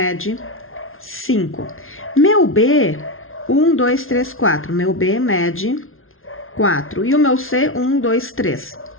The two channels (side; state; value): right; late; 0.61 ms